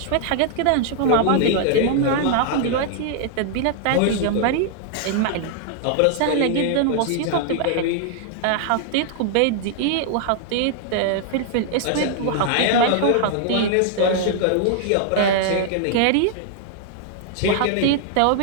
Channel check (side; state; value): both; different; correlation 0.00